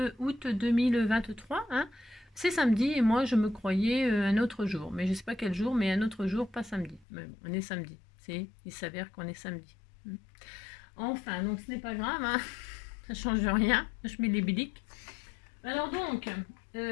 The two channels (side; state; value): right; drops out; at 7.1 s